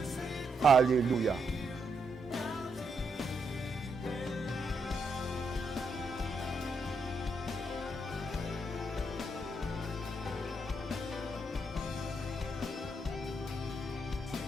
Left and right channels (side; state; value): both; normal; correlation 0.79